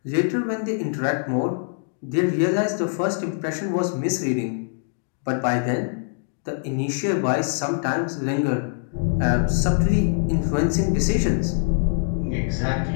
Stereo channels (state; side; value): silent; right; digital silence